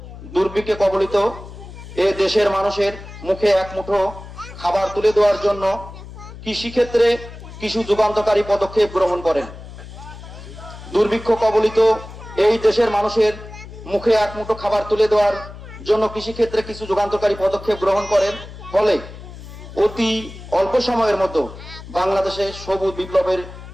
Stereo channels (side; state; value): left; noise; hum, 14 dB below the sound